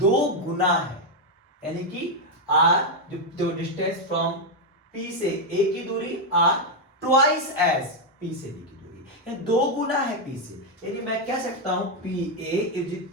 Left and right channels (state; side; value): normal; both; correlation 0.02